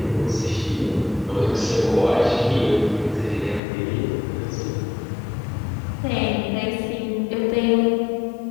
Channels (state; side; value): drops out; right; at 3.6 s